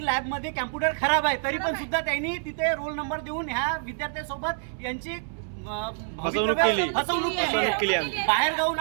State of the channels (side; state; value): left; silent; 60 dB below the other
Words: लॅबमध्ये कॅम्प्युटर खराब आहे, तरी पण सुद्धा त्यांनी तिथे रोल नंबर देऊन ह्या विद्यार्थ्यांसोबत यांची फसवणूक केली बाहेर गावून